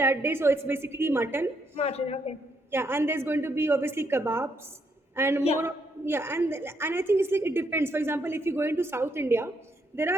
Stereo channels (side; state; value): both; normal; correlation 0.75